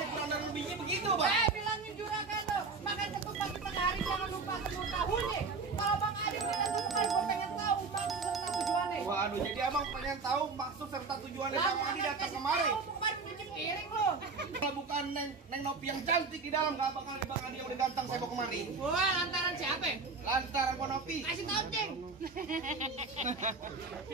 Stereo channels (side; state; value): left; quieter; 4.4 dB